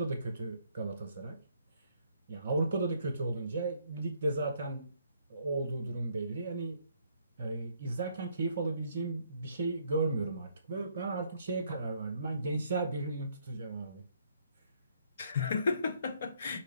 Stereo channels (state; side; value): inverted; both; correlation -0.68